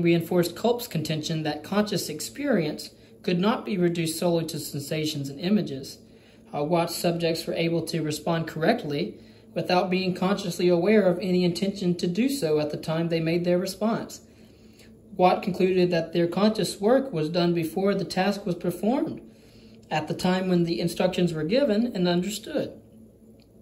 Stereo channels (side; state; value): both; identical; correlation 1.00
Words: reinforced Culp's contention that conscious experience could not be reduced solely to sensations and images. Watt's subjects were able to respond correctly without being consciously aware of any intention to do so at the time they made their response. Watt concluded that their conscious work was done before the task was performed, at the time when the instructions were given and understood.